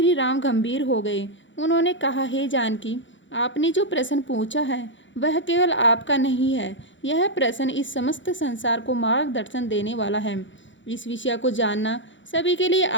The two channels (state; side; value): late; right; 0.54 ms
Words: राम गंभीर हो गए। उन्होंने कहा, हे जानकी, आपने जो प्रश्न पूछा है वह केवल आपका नहीं है। यह प्रश्न इस समस्त संसार को मार्गदर्शन देने वाला है। इस विषय को जानना सभी के लिए